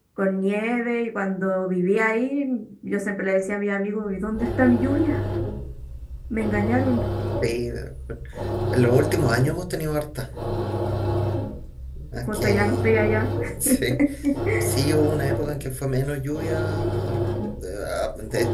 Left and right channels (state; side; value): identical; both; correlation 1.00